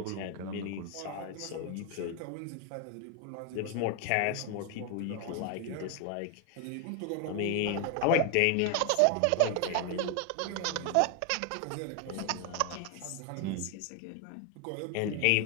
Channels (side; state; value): both; different; correlation 0.01